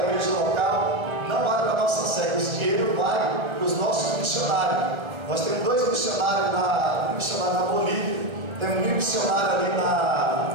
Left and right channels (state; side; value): late; left; 1.3 ms